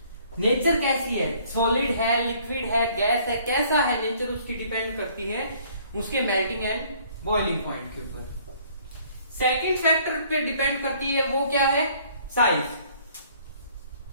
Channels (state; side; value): inverted; both; correlation -0.59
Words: नेचर कैसी है, सॉलिड है, लिक्विड है, गैस है, कैसा है नेचर, उसकी डिपेंड करती है उसके मेल्टिंग एंड बॉइलिंग पॉइंट के ऊपर। सेकंड फैक्टर पे डिपेंड करती है, वो क्या है, साइज।